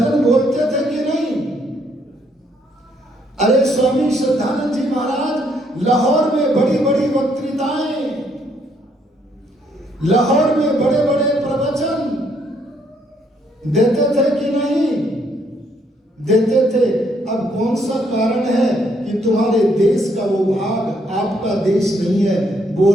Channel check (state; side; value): normal; both; correlation 0.70